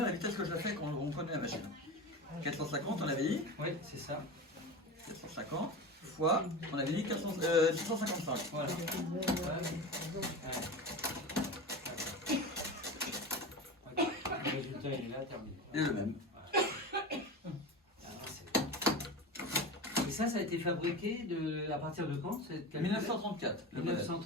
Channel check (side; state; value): both; normal; correlation 0.27